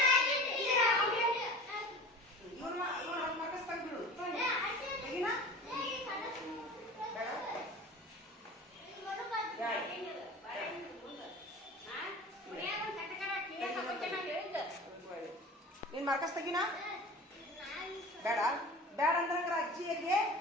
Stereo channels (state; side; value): normal; both; correlation 0.38